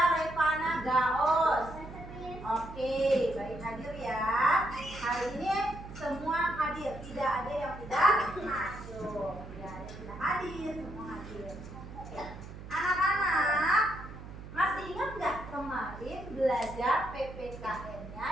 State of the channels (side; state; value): right; noise; hum, 13 dB below the sound